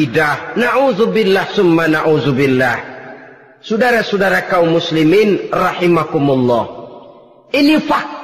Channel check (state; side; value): identical; both; correlation 1.00